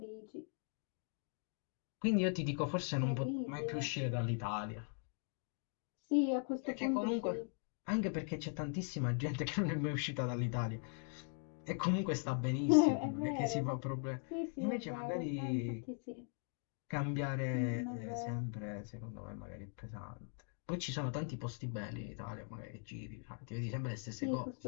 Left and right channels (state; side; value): silent; right; 51 dB below the other